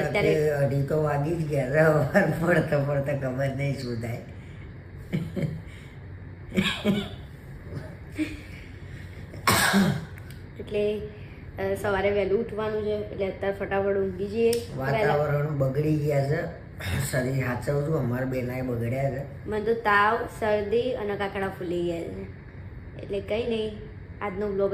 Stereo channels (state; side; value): identical; both; correlation 1.00